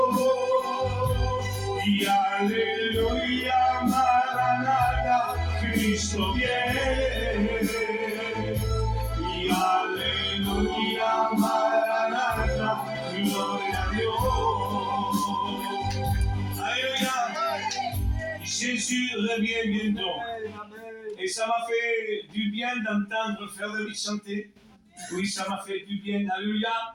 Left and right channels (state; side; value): identical; both; correlation 1.00